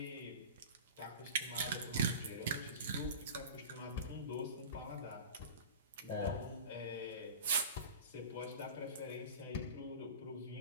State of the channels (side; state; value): both; inverted; correlation -0.33